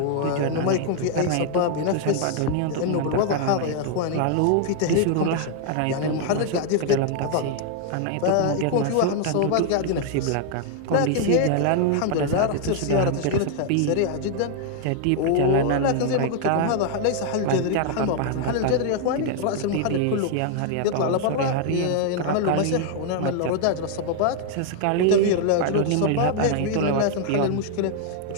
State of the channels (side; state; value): both; different; correlation 0.00